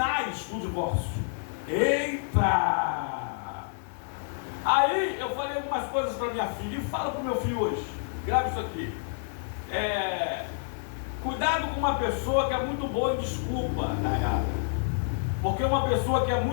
do divórcio. Eita! Aí eu falei algumas coisas para minha filha e falo para o meu filho hoje. Grave isso aqui. Cuidado com uma pessoa que é muito boa em desculpa, tá errado? Porque uma pessoa que é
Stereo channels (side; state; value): right; silent; digital silence